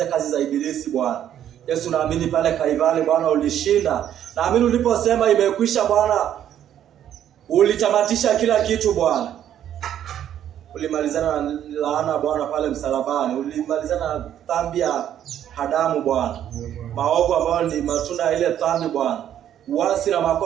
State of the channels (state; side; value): quieter; left; 10.5 dB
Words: kazi za ibilisi Bwana. Yesu, naamini pale Kalvari Bwana ulishinda. Naamini uliposema imekwisha Bwana, ulitamatisha kila kitu Bwana. Ulimalizana na laana Bwana pale msalabani. Ulimalizana na dhambi ya Adamu Bwana, maovu ambayo ni matunda ya ile dhambi Bwana, uasi na